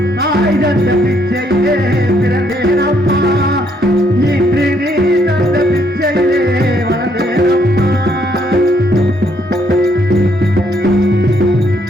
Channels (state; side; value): normal; both; correlation 0.70